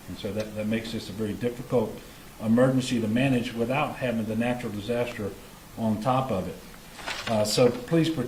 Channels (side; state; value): both; identical; correlation 1.00